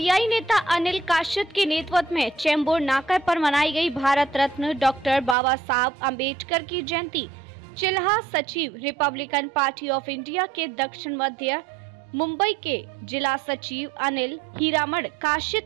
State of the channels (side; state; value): left; drops out; at 5.4 s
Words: नेता अनिल काशिद के नेतृत्व में चेंबूर नाका पर मनाई गई भारत रत्न डॉक्टर बाबा साहब अम्बेडकर की जयंती। चिल्हा सचिव रिपब्लिकन पार्टी ऑफ इंडिया के दक्षिण मध्य मुंबई के जिला सचिव अनिल हीरामण